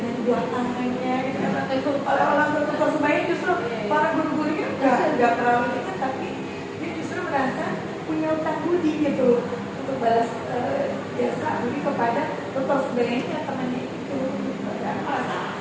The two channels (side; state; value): both; identical; correlation 1.00